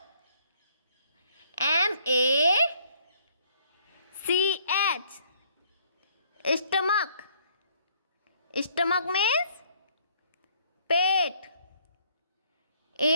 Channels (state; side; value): inverted; both; correlation -0.64